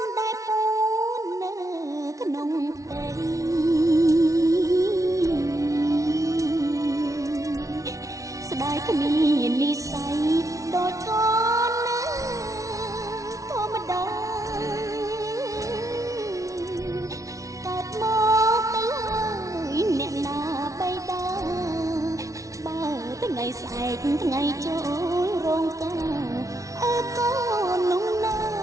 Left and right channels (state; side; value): late; left; 0.16 ms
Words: ស្ដាយគ្មាននិស័យដូចកូនណាធម្មតាកើតមកទៅហើយអ្នកណាបៃតាបើថ្ងៃស្អែកថ្ងៃចូលរោងការអើកូននោះណា